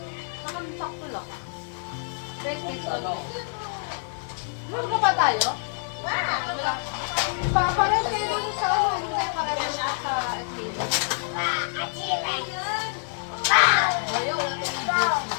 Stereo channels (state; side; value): silent; right; digital silence